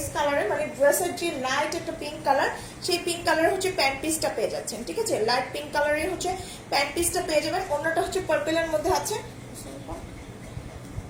কালারের, মানে ড্রেসের যে লাইট একটা পিঙ্ক কালার, সেই পিঙ্ক কালারের হচ্ছে প্যান্ট পিসটা পেয়ে যাচ্ছেন। ঠিক আছে, লাইট পিঙ্ক কালারের হচ্ছে প্যান্ট পিসটা পেয়ে যাবেন। অন্যটা হচ্ছে পার্পলের মধ্যে আছে,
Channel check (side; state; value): both; identical; correlation 1.00